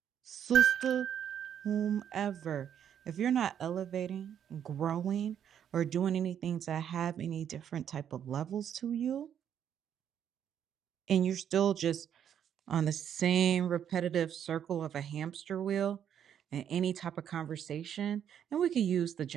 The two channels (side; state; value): left; quieter; 9.1 dB